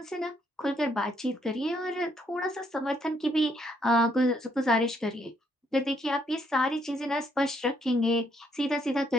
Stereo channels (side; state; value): both; normal; correlation 0.72